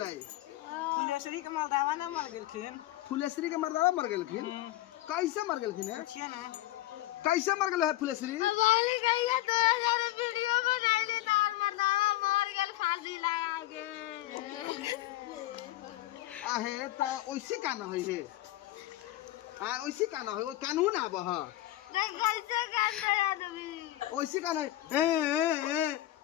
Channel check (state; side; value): quieter; right; 15.7 dB